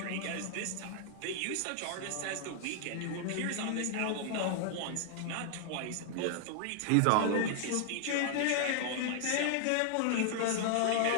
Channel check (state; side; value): different; both; correlation 0.00